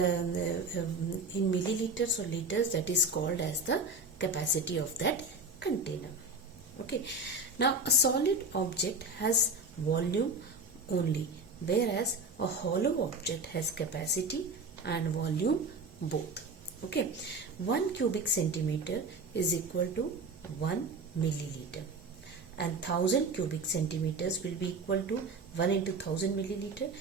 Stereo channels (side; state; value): left; quieter; 3.1 dB